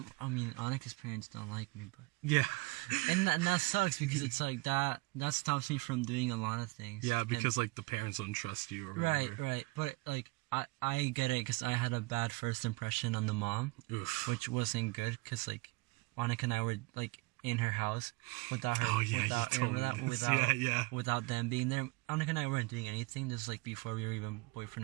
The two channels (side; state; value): left; quieter; 24.8 dB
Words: I mean Annika's parents don't like me, but and that sucks because it's like that stops me from doing a lot of things. Yeah, because like the parents don't trust you or whatever. Right. But like I get it because I had a bad first impression on the mom, which wasn't good because like Annika and I were like in her house without her, without them being there. Annika and I weren't doing anything. This was like before we were even